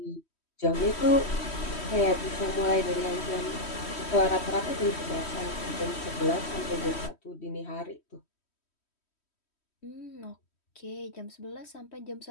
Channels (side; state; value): right; late; 3.1 ms